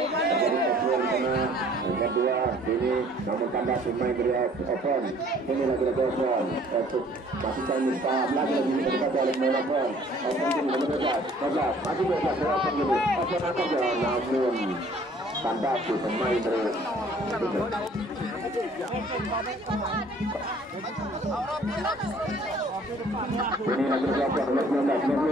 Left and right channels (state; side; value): normal; both; correlation 0.55